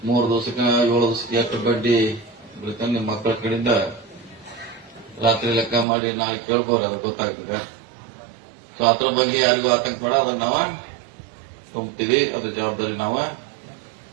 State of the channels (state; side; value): drops out; left; at 5.9 s